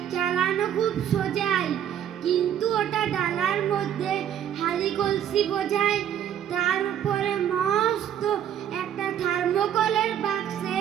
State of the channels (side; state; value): left; quieter; 9.9 dB